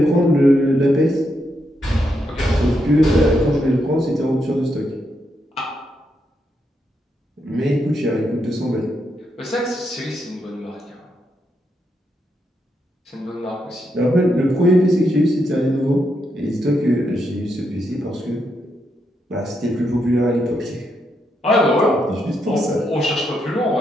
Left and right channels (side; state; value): both; normal; correlation 0.81